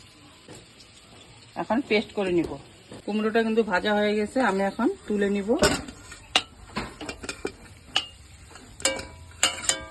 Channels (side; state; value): both; identical; correlation 1.00